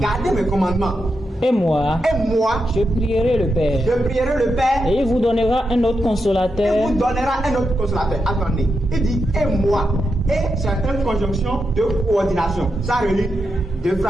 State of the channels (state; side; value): normal; both; correlation 0.86